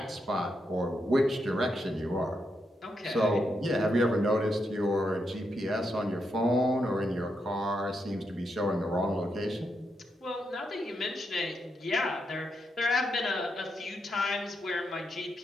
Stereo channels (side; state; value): both; normal; correlation 0.82